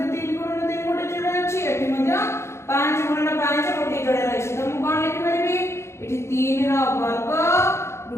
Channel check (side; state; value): right; late; 0.13 ms